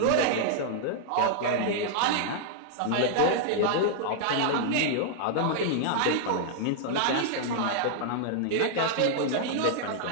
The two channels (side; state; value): both; different; correlation -0.01